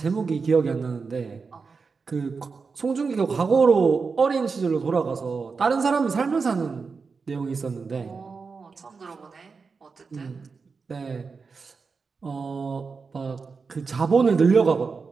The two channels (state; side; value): quieter; left; 4.9 dB